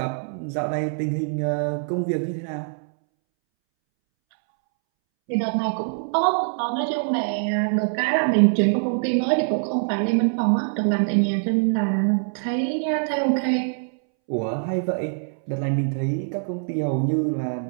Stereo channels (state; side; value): silent; left; 63 dB below the other